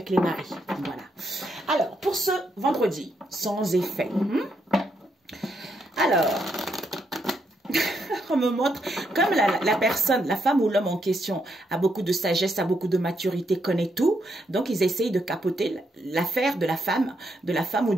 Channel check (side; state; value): both; normal; correlation 0.78